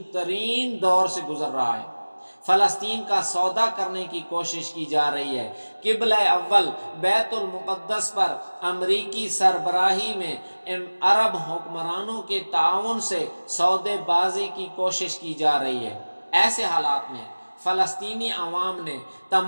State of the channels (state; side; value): inverted; both; correlation -1.00